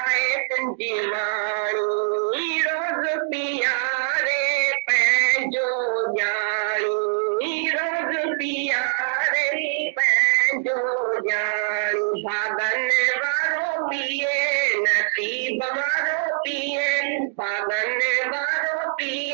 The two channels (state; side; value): silent; left; digital silence